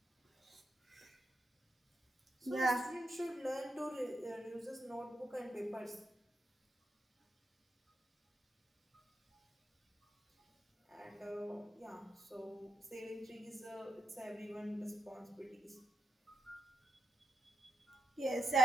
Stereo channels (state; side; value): normal; both; correlation 0.85